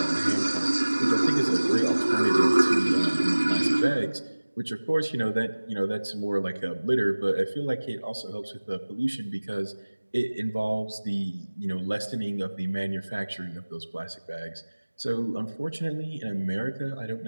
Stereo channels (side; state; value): both; inverted; correlation -1.00